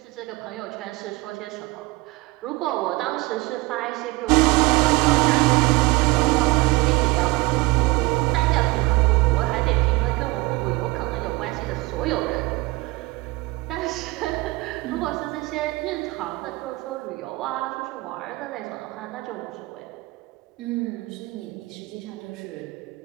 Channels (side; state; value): left; quieter; 22.1 dB